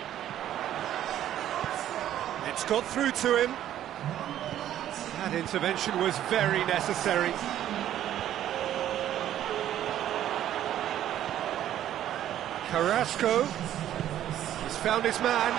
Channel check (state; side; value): quieter; left; 11.7 dB